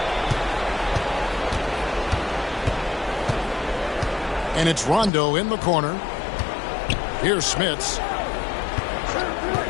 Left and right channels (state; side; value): drops out; right; at 5.1 s